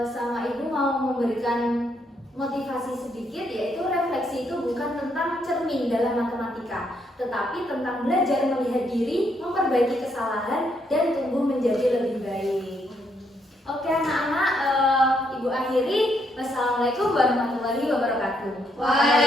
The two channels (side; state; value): both; normal; correlation 0.75